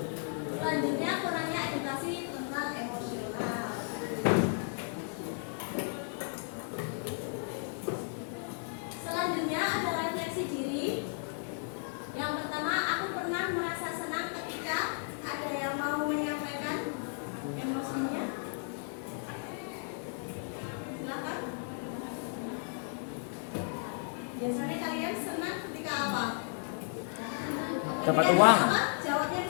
Selanjutnya kurangnya edukasi tentang emosional. Selanjutnya ada refleksi diri. Yang pertama, aku pernah merasa senang ketika ada yang mau menyampaikan emosinya. Silakan. Biasanya kalian senang ketika apa? Dapat Ketika uang. apa? Jawabnya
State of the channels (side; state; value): right; silent; 55 dB below the other